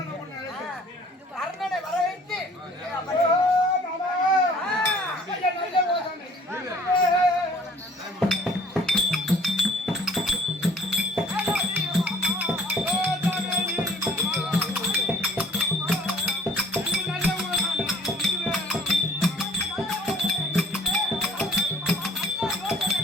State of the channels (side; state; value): both; normal; correlation 0.54